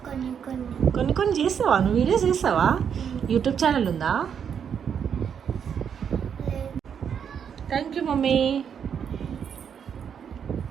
కొన్ని కొన్ని. కొన్ని కొన్ని చేస్తావా నువ్వు? వీడియోస్ చేస్తావా? యూట్యూబ్ ఛానల్ ఉందా? Thank you mummy.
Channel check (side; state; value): left; quieter; 7.7 dB